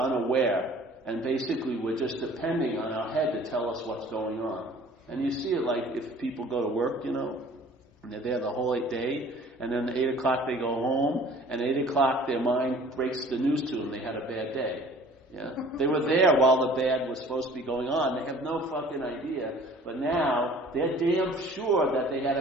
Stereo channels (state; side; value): normal; both; correlation 0.50